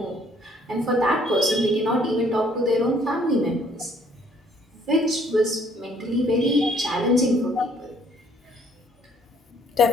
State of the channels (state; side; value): normal; both; correlation 0.62